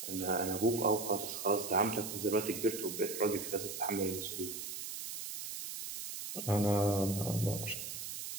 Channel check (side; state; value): right; noise; hiss, 7 dB below the sound